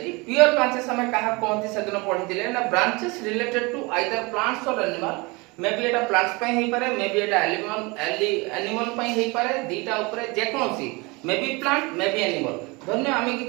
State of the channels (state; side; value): quieter; left; 26.1 dB